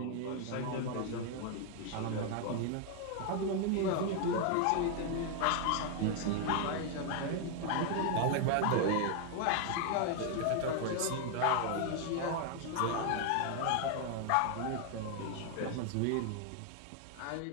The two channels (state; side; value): different; both; correlation 0.00